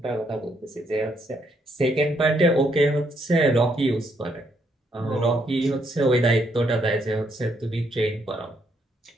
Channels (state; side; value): normal; both; correlation 0.74